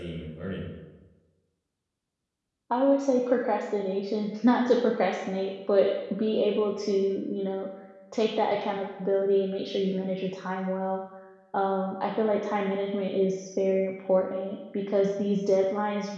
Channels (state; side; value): identical; both; correlation 1.00